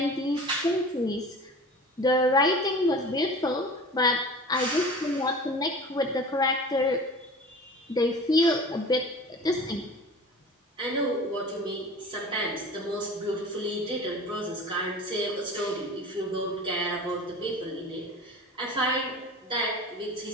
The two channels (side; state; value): both; normal; correlation 0.39